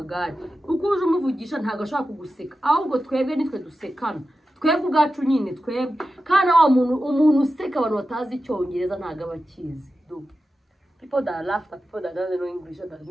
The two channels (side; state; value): both; normal; correlation 0.92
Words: ukuje umuvugisha ntago ashaka kuguseka ahubwo twebwe nitwe dusekana twebwe ubwacu nyine twebwe kana wa umuntu useka abantu batazi Icyongereza ntago abakizi. People that laugh at people that don't know English or that